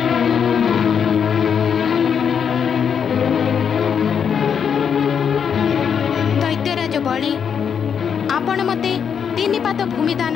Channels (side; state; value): right; quieter; 7.3 dB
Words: दैत्यराज बलि आपण मते 3 पाद भूमि दान